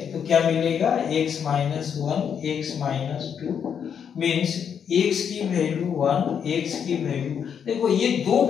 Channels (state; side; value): quieter; right; 7.7 dB